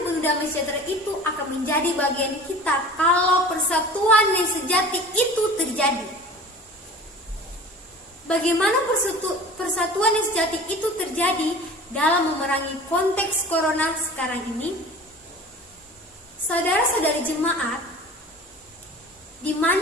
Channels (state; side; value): normal; both; correlation 0.40